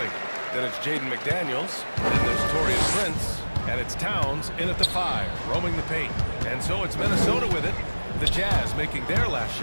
Then it's Jaden McDaniels. Then there's Torian Prince. And it's Towns in at the 5, roaming the paint. And so it's Minnesota with it. The Jazz making their last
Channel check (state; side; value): inverted; both; correlation -1.00